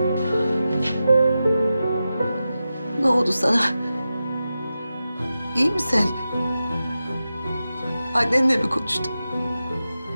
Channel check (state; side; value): inverted; both; correlation -0.92